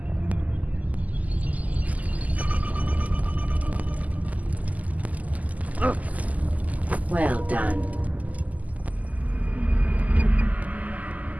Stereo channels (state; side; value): late; left; 0.076 ms